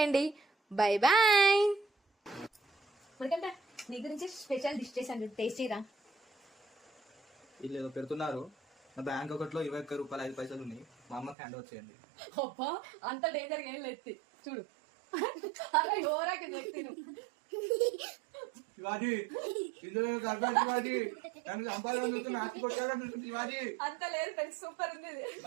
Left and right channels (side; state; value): left; drops out; at 11.4 s